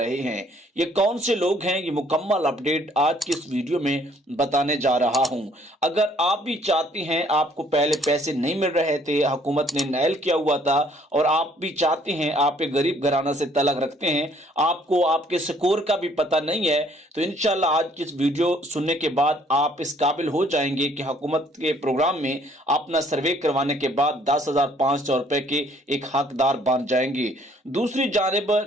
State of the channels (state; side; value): normal; both; correlation 0.62